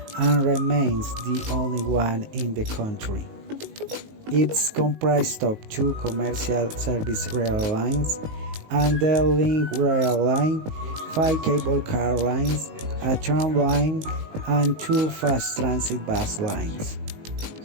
and remains the only one in the country. It's comprised of 2 commercial service rail lines, and the link rail line, 5 cable car lines, a tram line, and 2 fast transit bus lines.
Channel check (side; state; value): left; late; 19 ms